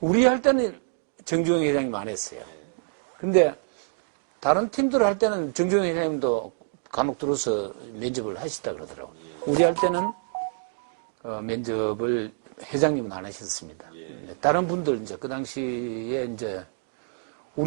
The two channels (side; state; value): left; silent; digital silence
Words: 우리 할 때는 정주영 회장님 안 했어요. 근데 다른 팀들 할 때는 정주영 회장님도 간혹 들어서 면접을 하시다 그러더라고요. 우리 할 때는 면접을 회장님은 안 하셨습니다. 다른 분들 이제 그 당시에 이제